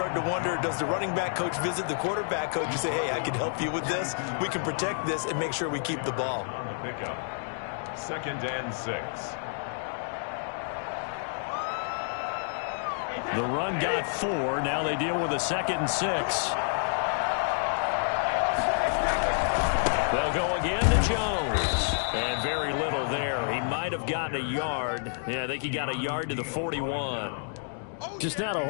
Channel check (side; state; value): right; silent; digital silence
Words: to wonder, does the running back coach visit the quarterback coach and say, hey, I can help you with this. We can protect this and make sure we keep the ball. On the pickup, 2nd and 6. The run got 4. Now they deal with a 2nd and 6. They'll go again to Jones. And very little there. He might have gotten a yard. Yeah, I think he got a yard to the 41. Just not a